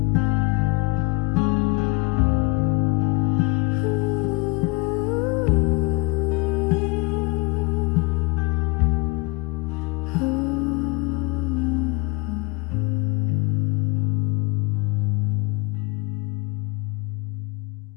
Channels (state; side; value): quieter; right; 26.8 dB